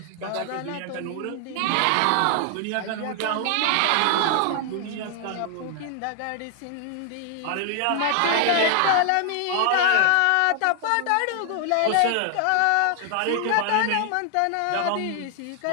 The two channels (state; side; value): different; both; correlation 0.00